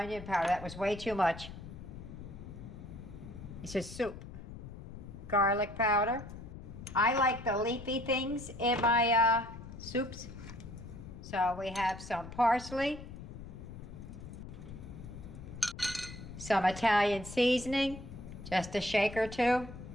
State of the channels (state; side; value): noise; left; rumble, 12 dB below the sound